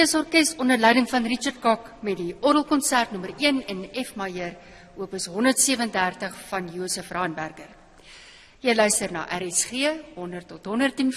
onder leiding van Richard Kok met die orgelkonsert nommer 1 in F majeur, opus 137 van Josef Raanberger. Jy luister na RSG 100 tot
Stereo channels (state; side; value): identical; both; correlation 1.00